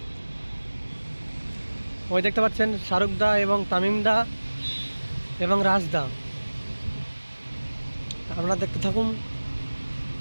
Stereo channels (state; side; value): inverted; both; correlation -1.00